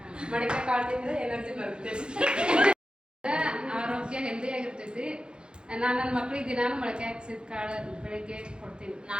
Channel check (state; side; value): late; left; 0.050 ms